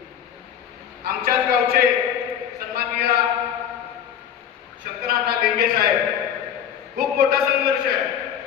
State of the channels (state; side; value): quieter; right; 9.1 dB